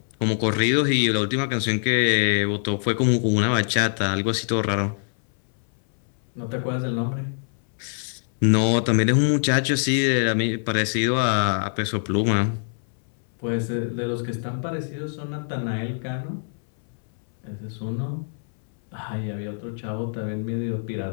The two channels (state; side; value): silent; right; 63 dB below the other